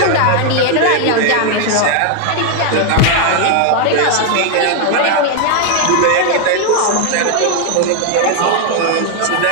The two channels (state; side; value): different; both; correlation 0.00